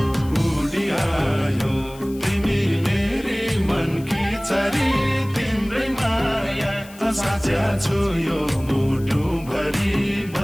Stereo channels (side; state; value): left; noise; hiss, 21 dB below the sound